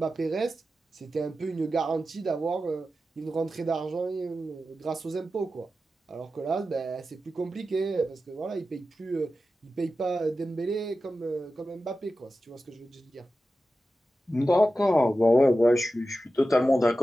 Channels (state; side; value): normal; both; correlation 0.93